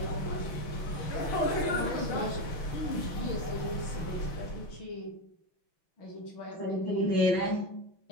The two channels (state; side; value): late; right; 6.1 ms